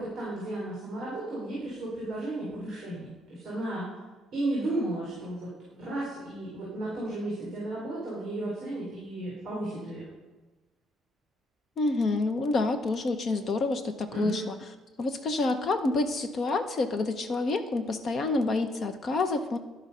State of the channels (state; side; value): normal; both; correlation 0.72